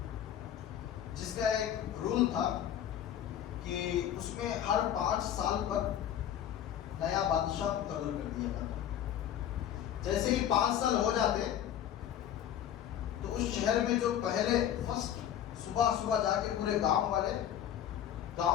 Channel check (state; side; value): quieter; right; 10.4 dB